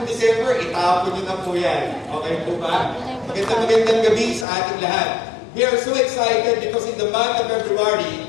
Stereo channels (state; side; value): drops out; right; at 4.5 s